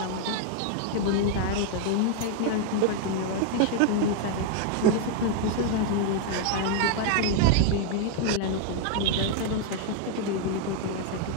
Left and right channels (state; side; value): different; both; correlation 0.00